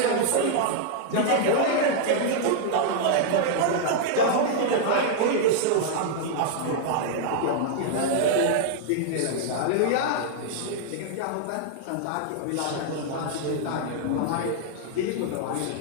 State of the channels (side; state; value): both; different; correlation -0.01